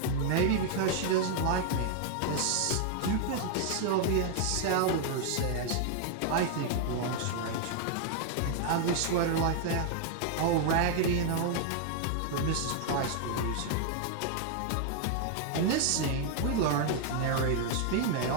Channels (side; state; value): both; different; correlation 0.00